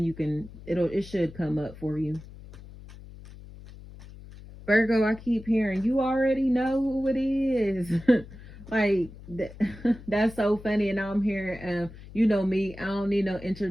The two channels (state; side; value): noise; left; hum, 17 dB below the sound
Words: it should come up for you. Virgo, I keep hearing you already know who it is. like that's so funny, and now I'm hearing, you know me, I don't need no